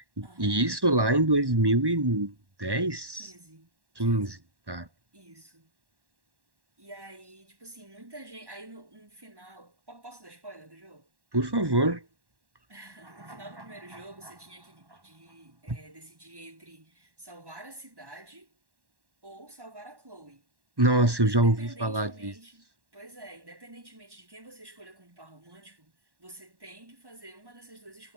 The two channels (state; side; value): late; left; 1.1 ms